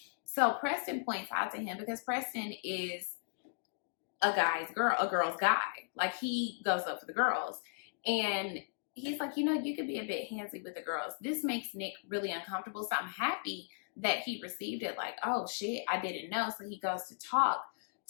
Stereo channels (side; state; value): right; silent; digital silence